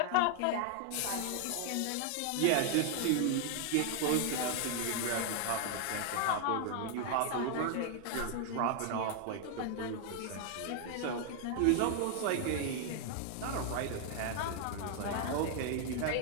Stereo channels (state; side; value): different; both; correlation 0.00